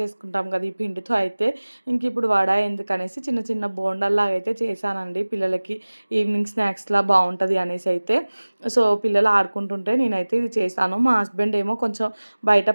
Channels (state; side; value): inverted; both; correlation -1.00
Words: కదా ఈ పిండితో అయితే. ఇంక ఇప్పుడు వడ ఎందుకనేసి చిన్న చిన్న బోండాల్లాగా అయితే చేశానండి పిల్లలకి. ఈవినింగ్ స్నాక్స్లా బాగుంటుంది అనేసి అయితే. సో పిల్లలు ఆడుకుంటుంటే నేనైతే ఇది చేశాను. మా హస్బెండ్ ఏమో కొంచెం బయట